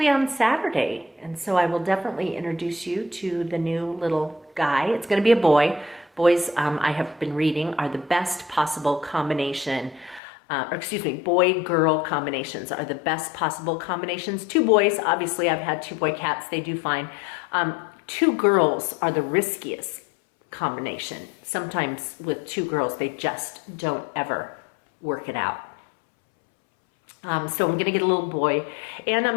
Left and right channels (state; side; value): drops out; right; at 10.2 s